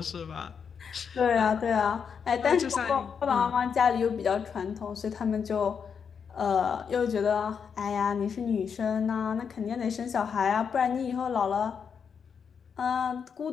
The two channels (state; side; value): quieter; right; 6.7 dB